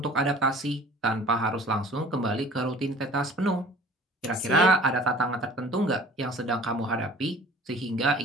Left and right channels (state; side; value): normal; both; correlation 0.47